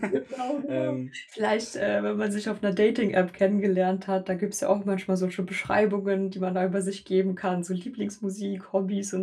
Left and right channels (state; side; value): identical; both; correlation 1.00